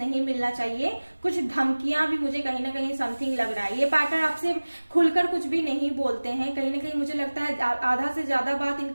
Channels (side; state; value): both; inverted; correlation -1.00